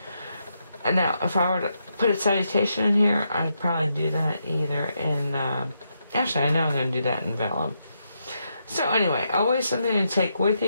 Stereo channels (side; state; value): both; inverted; correlation -0.81